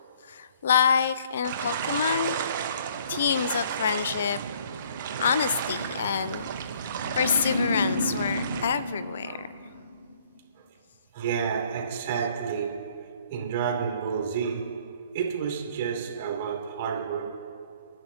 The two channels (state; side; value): inverted; both; correlation -0.59